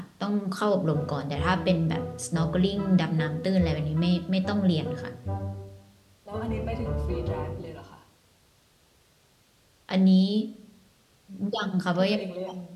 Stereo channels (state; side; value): identical; both; correlation 1.00